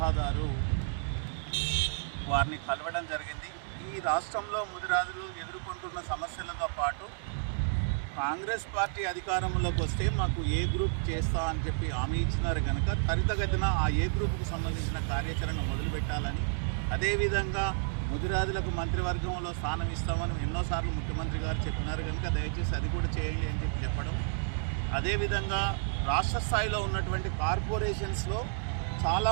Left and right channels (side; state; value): left; silent; digital silence